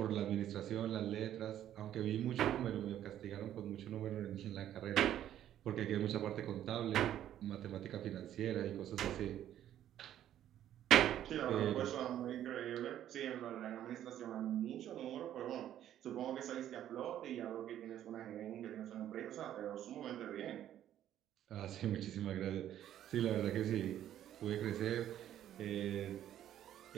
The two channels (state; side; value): quieter; left; 11.4 dB